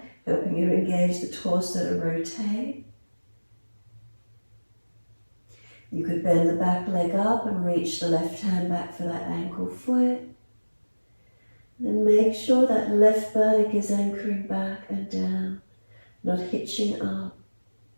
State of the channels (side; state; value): both; inverted; correlation -1.00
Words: helping you engage the torso to rotate. You could bend the back leg up and reach the left hand back for that ankle foot. Then make sure that left buttock is anchoring back and down, not hitching up.